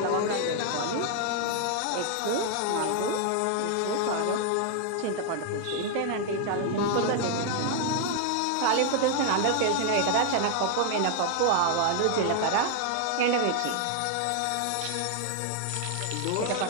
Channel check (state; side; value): different; both; correlation 0.00